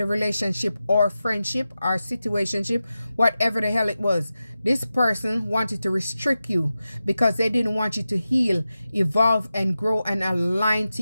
relationship or friendship or situationship, whatever the hell it was. This person wanted to restrict you because they didn't want you to heal, evolve, and grow and align to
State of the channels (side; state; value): both; inverted; correlation -0.92